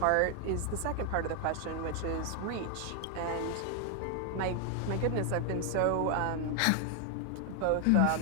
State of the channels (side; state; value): both; different; correlation 0.00